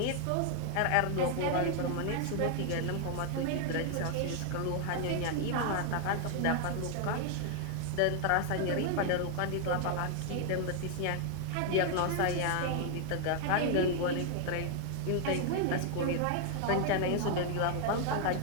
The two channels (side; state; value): both; different; correlation 0.00